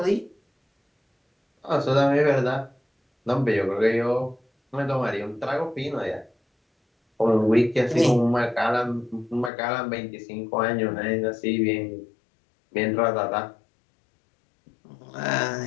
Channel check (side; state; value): right; drops out; at 9.5 s